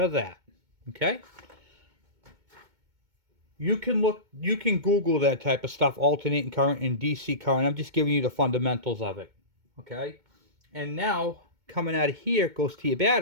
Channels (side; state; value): left; late; 2.2 ms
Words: that. Okay? You can Google that type of stuff, alternating current and DC current. I'm just giving you the fundamentals of it. Okay? And now, coming out of here, it goes to your